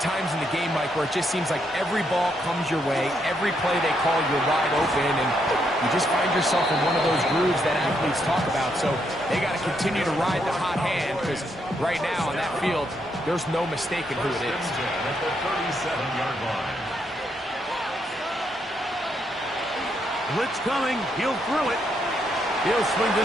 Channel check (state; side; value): normal; both; correlation 0.77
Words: in the game, Mike, where it just seems like every ball comes your way, every play they call, you're wide open, and you just find yourself in one of those grooves that athletes talk about. So they got to continue to ride the hot hand, because right now on that field, there's no mistaking who it is. At the 37-yard line. Blitz coming. He'll throw it. He'll swing